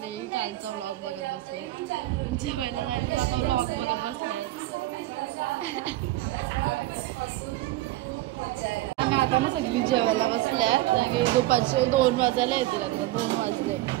कालचा व्लॉग बघत बसलाय. जेवायला जायचं आता व्लॉग बघत बसलाय. आणि आता ना सगळी जेवायला बसल्यात आणि दुपारचे 2 वाजायला येतील. आता 2 वाजले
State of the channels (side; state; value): left; quieter; 16.8 dB